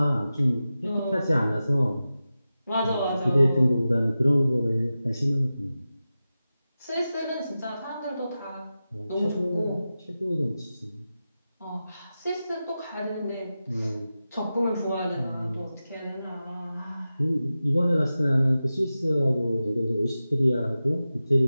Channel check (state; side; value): inverted; both; correlation -0.93